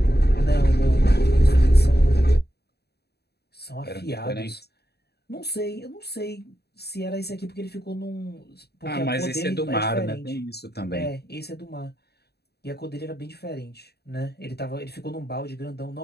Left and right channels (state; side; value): late; right; 0.47 ms